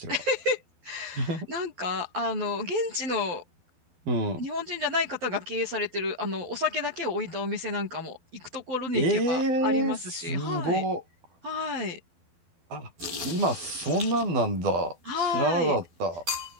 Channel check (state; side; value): late; left; 12 ms